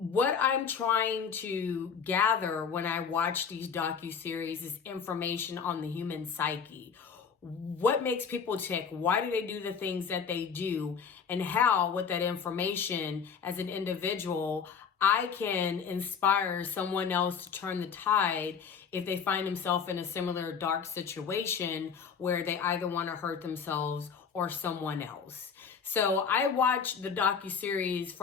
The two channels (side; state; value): right; quieter; 6.4 dB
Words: I'm trying to gather when I watch these docuseries is information on the human psyche. What makes people tick? Why do they do the things that they do? And how, with that information as an individual, I can inspire someone else to turn the tide if they find themselves in a similar dark situation where they either want to hurt themselves or someone else. So I watch the docuseries